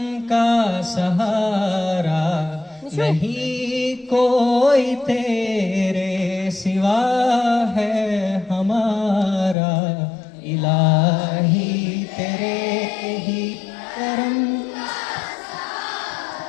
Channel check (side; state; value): right; drops out; at 9.6 s